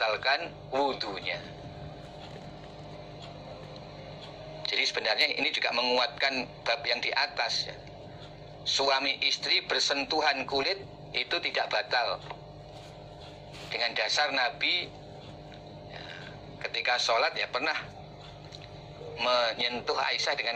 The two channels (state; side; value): identical; both; correlation 1.00